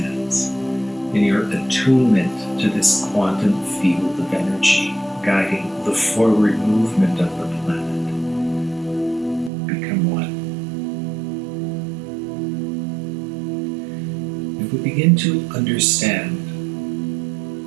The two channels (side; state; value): left; drops out; at 9.5 s